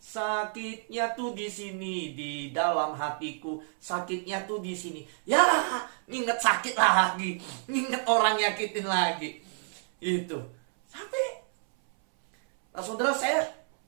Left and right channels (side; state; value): left; silent; 58 dB below the other